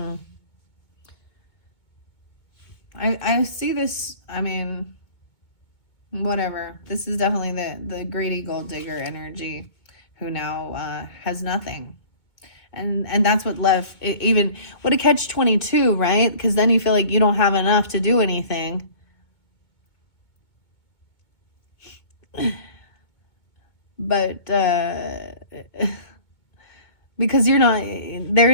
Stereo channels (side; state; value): right; late; 2.3 ms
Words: I see this, whatever. This is definitely the greedy gold digger energy who now has nothing. And that's what left, even, what a catch-22, right? Because then you feel like you don't have enough to do anything. But because there